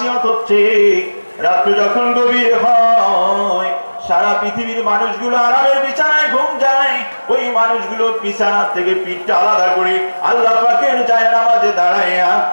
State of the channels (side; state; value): both; inverted; correlation -1.00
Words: হচ্ছে, রাত্র যখন গভীর হয়, সারা পৃথিবীর মানুষগুলো আরামের বিছানায় ঘুম যায়, ওই মানুষগুলো বিছানা থেকে পিঠটা আলাদা করে আল্লাহ পাকের জায়নামাজে দাঁড়াইয়া